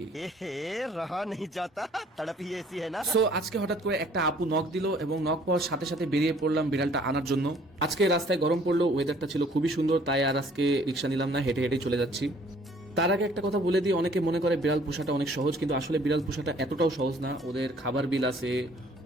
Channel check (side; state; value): both; normal; correlation 0.58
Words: रहा नहीं जाता तड़प ही ऐसी है ना। সো আজকে হঠাৎ করে একটা আপু নক দিল এবং নক পাওয়ার সাথে সাথে বেরিয়ে পড়লাম বিড়ালটা আনার জন্য। আজকে রাস্তায় গরম পড়লো, ওয়েদারটা ছিল খুবই সুন্দর, তাই আর আজকে রিক্সা নিলাম না, হেঁটে হেঁটে চলে যাচ্ছি। তার আগে একটা কথা বলে দিই, অনেকে মনে করে বিড়াল পোষাটা অনেক সহজ, কিন্তু আসলে বিড়াল পোষাটা এতটাও সহজ না। ওদের খাবার বিল আছে,